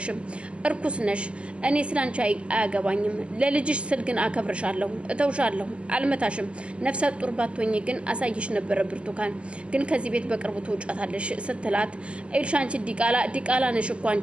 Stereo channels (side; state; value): left; late; 0.055 ms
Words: እርኩስ ነሽ። እኔ ስላንቺ አያገባኝም። ለልጅሽ ስል ግን አከብርሻለሁ፣ እተውሻለሁ፣ አልመታሽም። ነፍሰ ጡር ባትሆኚ ግን አሳይሽ ነበረ ብርቱካን፣ ግን ከዚህ ቤት በቅርቡ ትውጫታለሽ ስትላት እዩልሽ አንቺ ዲቃላ ነሽ እኮ